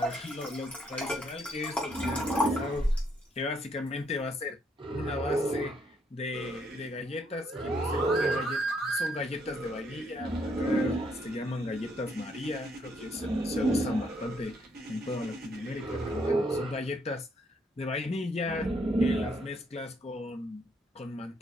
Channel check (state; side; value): normal; both; correlation 0.72